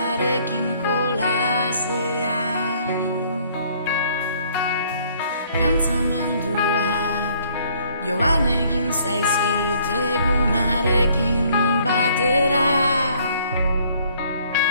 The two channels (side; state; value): both; inverted; correlation -0.62